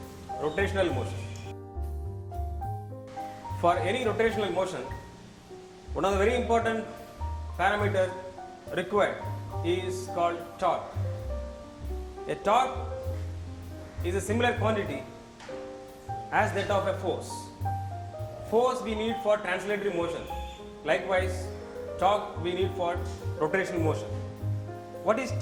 rotational motion. For any rotational motion, one of the very important parameters required is called torque. A torque is a similar quantity as that of a force. Force we need for translatory motion. Likewise, torque we need for rotational motion. What is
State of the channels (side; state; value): both; identical; correlation 1.00